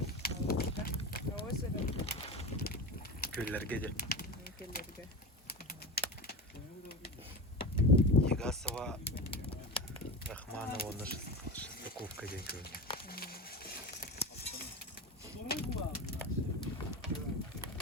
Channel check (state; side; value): normal; both; correlation 0.27